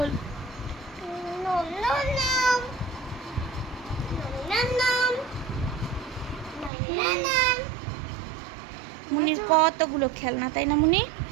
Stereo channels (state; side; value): drops out; left; at 6.7 s